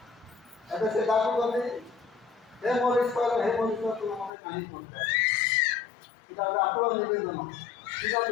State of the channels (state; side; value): drops out; right; at 4.3 s